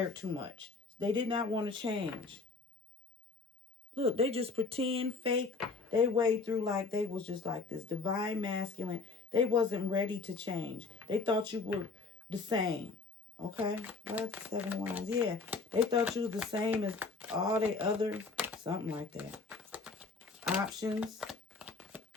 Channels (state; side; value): quieter; right; 4.1 dB